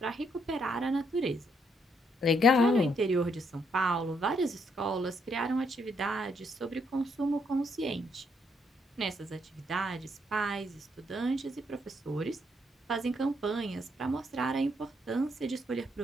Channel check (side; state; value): both; normal; correlation 0.74